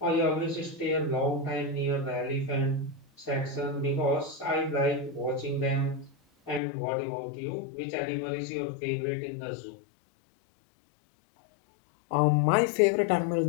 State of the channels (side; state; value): right; drops out; at 6.6 s